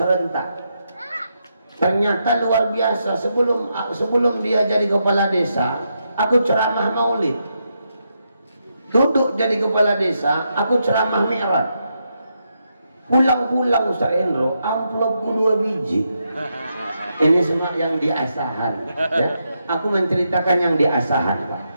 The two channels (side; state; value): both; inverted; correlation -0.82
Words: Ternyata luar biasa. Sebelum dia jadi kepala desa, aku ceramah maulid. Duduk jadi kepala desa, aku ceramah mi'raj. Pulang-pulang Ustaz Hendro, amplopku 2 biji. Ini semua yang di Asahan ya. Aku menceritakan yang di Asahan, Pak.